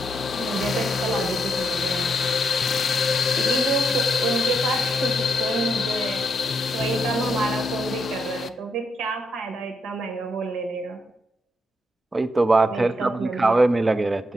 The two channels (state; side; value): normal; both; correlation 0.79